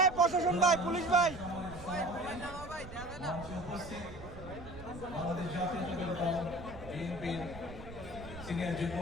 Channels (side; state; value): right; noise; rumble, 14 dB below the sound